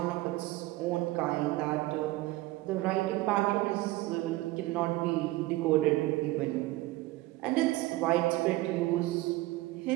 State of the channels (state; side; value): quieter; left; 18.9 dB